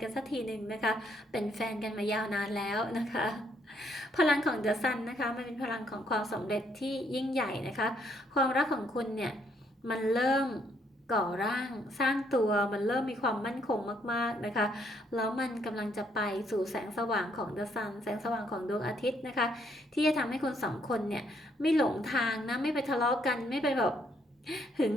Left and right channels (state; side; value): normal; both; correlation 0.71